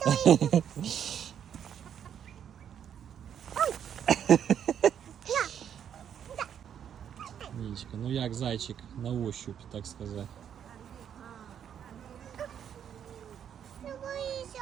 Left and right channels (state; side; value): quieter; left; 8.9 dB